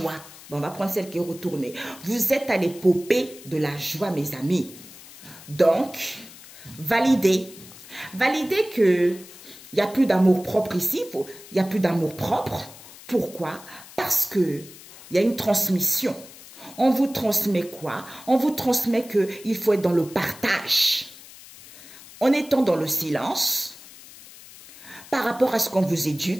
Bon, on va prendre celle qui est retournée. Vous êtes à l'épopée de la joie, mes amis. Donc, validez. Validez que il n'y a plus d'amour propre ici, il n'y a plus d'amour propre. Pourquoi? Parce qu'il y a une transmission. On vous transmet quoi? On vous transmet qu'il faut être dans le partage. En étant dans le silence, par rapport à ce qu'on vous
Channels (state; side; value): noise; left; hiss, 19 dB below the sound